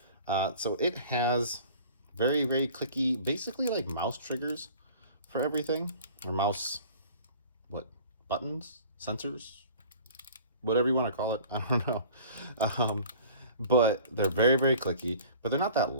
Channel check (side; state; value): both; inverted; correlation -0.47